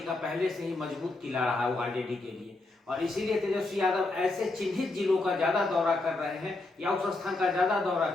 का पहले से ही मजबूत किला रहा है वो आरजेडी के लिए। और इसीलिए तेजस्वी यादव ऐसे चिन्हित जिलों का ज्यादा दौरा कर रहे हैं या उस स्थान का ज्यादा दौरा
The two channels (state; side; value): quieter; right; 3.1 dB